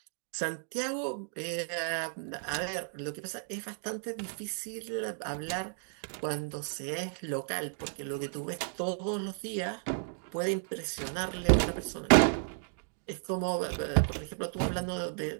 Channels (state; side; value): silent; left; 56 dB below the other